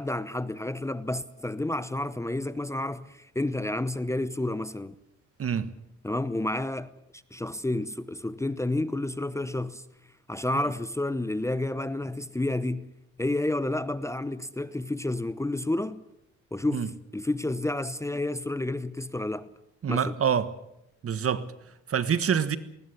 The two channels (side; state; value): both; normal; correlation 0.66